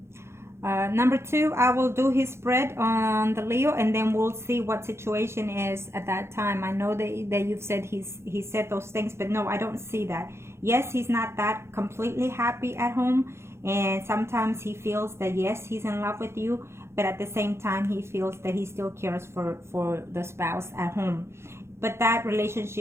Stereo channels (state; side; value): late; left; 0.13 ms